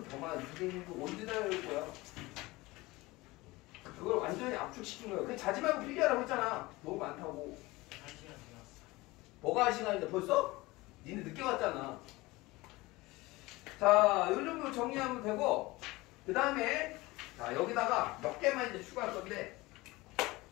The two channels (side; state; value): right; quieter; 21.1 dB